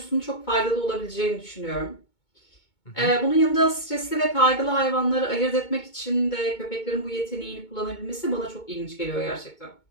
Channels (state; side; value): late; right; 2.2 ms